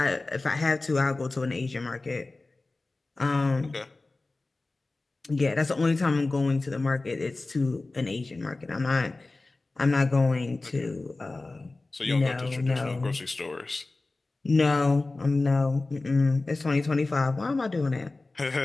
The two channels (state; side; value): quieter; right; 3.2 dB